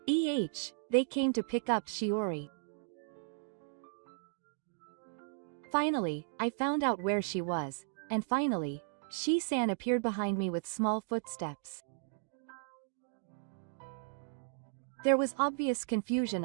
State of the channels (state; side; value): silent; left; digital silence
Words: They came to pick up Shiori. Finally, I found out where she was, and finally, Shi-san appeared behind me with small footsteps. There was obvious confusion